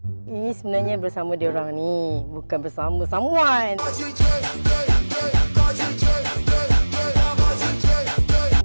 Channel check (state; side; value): inverted; both; correlation -1.00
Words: Ini sebenarnya bersama dia orang ni, bukan bersama someone.